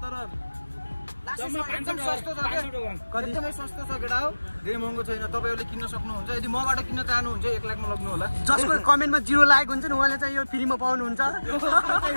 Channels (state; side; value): inverted; both; correlation -1.00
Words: तर एकदम सस्तो छ के एकदमै सस्तो छ केटा हो धेरै महँगो छैन तपाईहरुले किन्न सक्नुहुन्छ यदि मबाट किन्न चाहनुहुन्छ 1 लाखमा लग्नु होला जसको कमेन्टमा 0 लागेको हुन्छ नि उहाँले चाहिँ यो फ्रीमा पाउनुहुन्छ